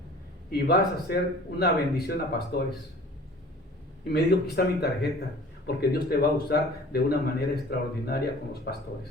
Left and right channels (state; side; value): normal; both; correlation 0.46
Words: y vas a hacer una bendición a pastores. Y me dijo, aquí está mi tarjeta, porque Dios te va a usar de una manera extraordinaria con los